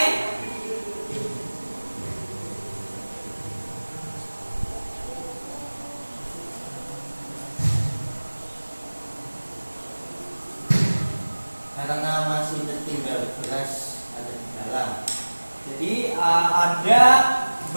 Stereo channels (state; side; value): inverted; both; correlation -1.00